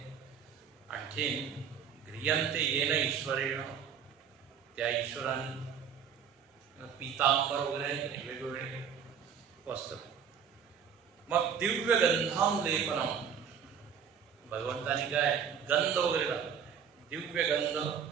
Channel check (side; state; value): left; quieter; 7.4 dB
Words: आणखीन गृह्यंते येन ईश्वरेण, त्या ईश्वराने पीतांबर वगैरे वेगवेगळे वस्त्र. मग दिव्य गंधाम लेपनम, भगवंतानी काय गंध वगैरे टाकलं, दिव्य गंध